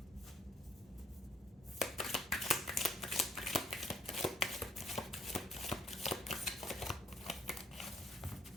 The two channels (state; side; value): normal; both; correlation 0.64